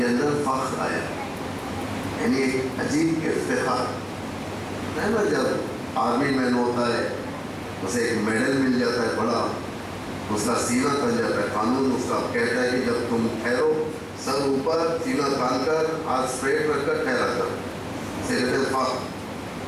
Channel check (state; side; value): identical; both; correlation 1.00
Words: اندر فخر آیا، یعنی ایک عجیب افتخار ہے نا۔ جب آرمی مین ہوتا ہے اسے ایک میڈل مل جاتا ہے بڑا، اس کا سینہ تن جاتا ہے، قانون اس کا کہتا ہے کہ جب تم ٹھہرو، سر اوپر، سینہ تان کر، ہاتھ اسٹریٹ رکھ کر ٹھہرا کر، اسے کہتے ہیں فخر،